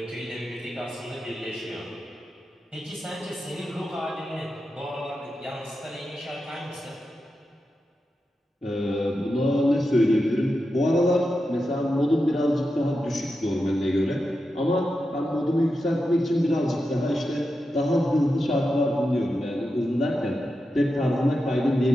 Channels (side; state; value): both; normal; correlation 0.89